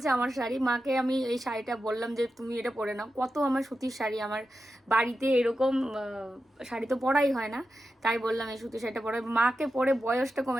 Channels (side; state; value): both; normal; correlation 0.90